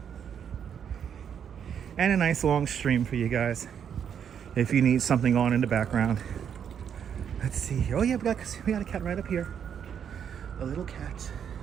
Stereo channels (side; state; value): left; quieter; 8.1 dB